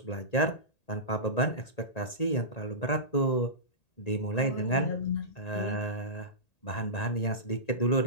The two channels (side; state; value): right; late; 1.8 ms